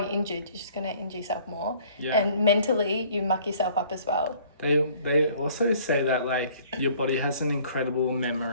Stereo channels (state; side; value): inverted; both; correlation -0.55